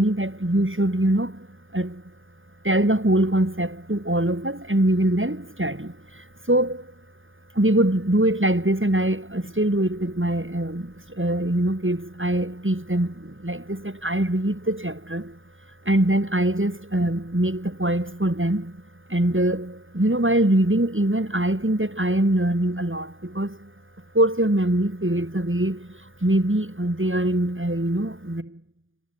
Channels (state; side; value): late; left; 0.58 ms